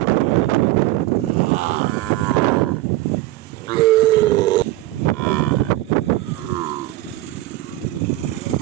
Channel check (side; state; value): left; quieter; 16.5 dB